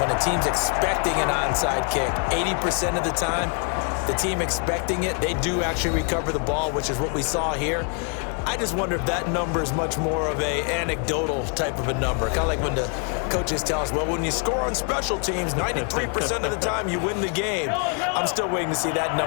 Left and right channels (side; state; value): right; quieter; 39.2 dB